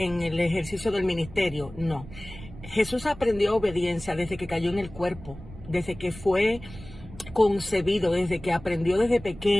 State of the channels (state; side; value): noise; right; rumble, 16 dB below the sound